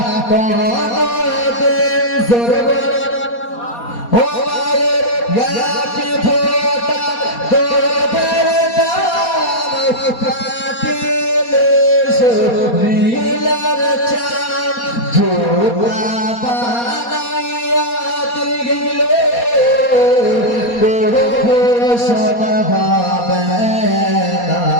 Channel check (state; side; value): late; right; 4.2 ms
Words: কোনদিন, জোরে বলো। ও মায়ের ইয়াকে ফোটা তোদের দাম কাটিলে শরীরের চাম, জোড়া বানাইয়া দিলে শোনা হবে না।